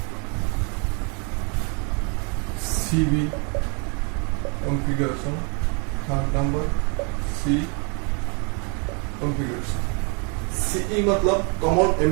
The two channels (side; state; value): left; quieter; 35.5 dB